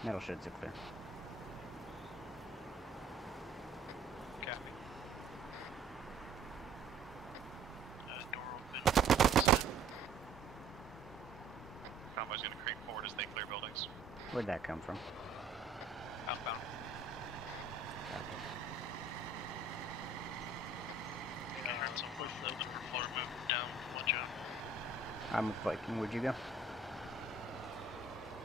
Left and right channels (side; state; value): left; quieter; 3.6 dB